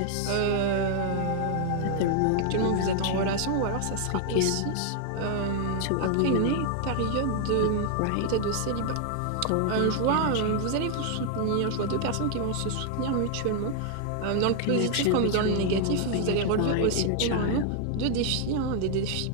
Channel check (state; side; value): different; both; correlation 0.00